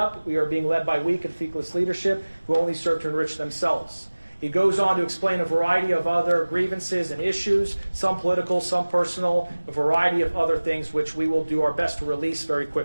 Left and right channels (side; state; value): both; inverted; correlation -1.00